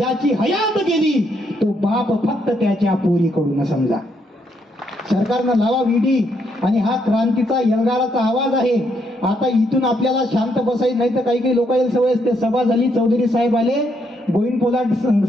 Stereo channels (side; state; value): both; normal; correlation 0.75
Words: हयात गेली, तो बाप फक्त त्याच्या पोरीकडून समजा. सरकारनं लावा ईडी. आणि हा क्रांतीचा एल्गाराचा आवाज आहे. आता इथून आपल्याला शांत बसायचं नाही तर काही लोक सवय असते. सभा झाली, चौधरी साहेब आले, गोविंद पोलाद